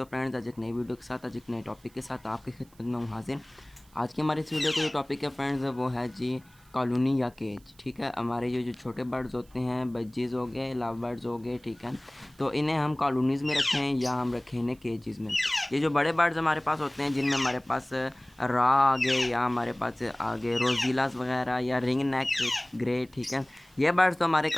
फ्रेंड्स, आज एक नई वीडियो के साथ, आज एक नए टॉपिक के साथ आपकी खिदमत में हूँ हाजिर। आज की हमारी इस वीडियो का जो टॉपिक है फ्रेंड्स, वो है जी कॉलोनी या केज। ठीक है, हमारे ये जो छोटे बर्ड्स होते हैं, बज्जीज़ हो गए, लव बर्ड्स हो गए, ठीक है, तो इन्हें हम कॉलोनीज़ में रखें या हम रखें इन्हें केजेज़ में। ये जो बड़े बर्ड्स हमारे पास होते हैं, जिनमें हमारे पास रा आगे या हमारे पास आगे रोजीलास वगैरह या रिंग नेक ग्रे, ठीक है, ये बर्ड्स तो हमारे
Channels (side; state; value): right; noise; hiss, 30 dB below the sound